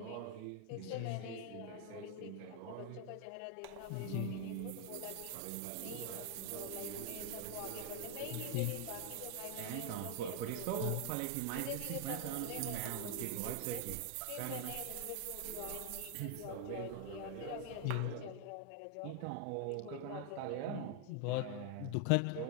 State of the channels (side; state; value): both; different; correlation 0.00